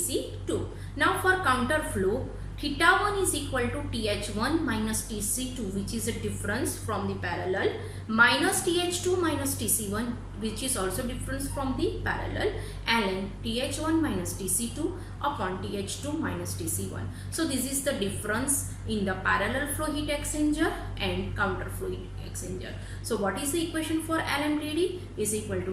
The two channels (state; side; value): identical; both; correlation 1.00